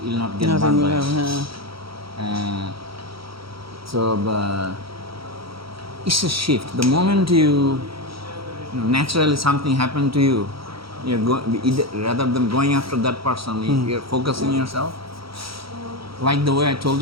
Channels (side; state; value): left; late; 0.75 ms